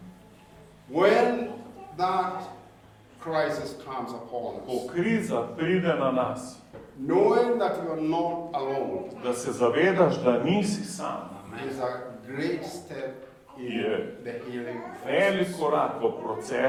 When that crisis comes upon Ko us, kriza pride na nas, knowing that you are not alone da se zavedaš, da nisi sam, is a great step in Yeah. the healing velik process. korak v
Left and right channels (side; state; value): both; identical; correlation 1.00